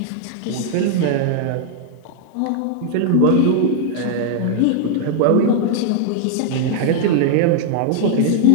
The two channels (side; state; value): both; different; correlation -0.01